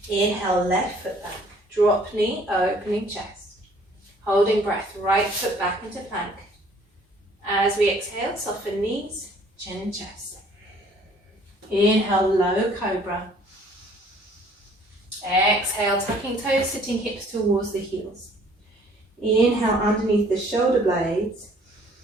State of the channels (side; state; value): both; normal; correlation 0.58